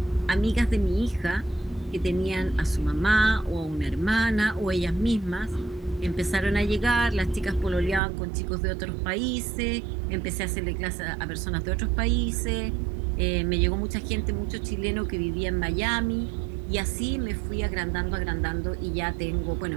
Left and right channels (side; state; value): left; drops out; at 8.0 s